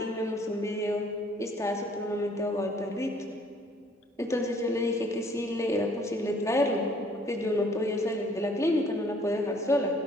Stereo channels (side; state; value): both; normal; correlation 0.59